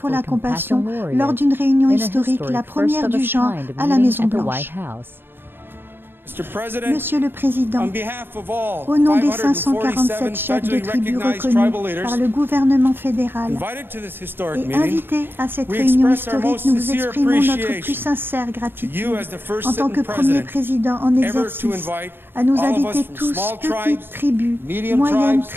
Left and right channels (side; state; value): left; late; 0.10 ms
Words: la compassion, lors d'une réunion historique, la première du genre à la Maison-Blanche. Monsieur le Président, au nom des 547 chefs de tribus reconnus par le gouvernement fédéral et invités à cette réunion historique, nous vous exprimons notre plus sincère gratitude en tant que premier président en exercice à nous inviter tous, petites tribus, moyennes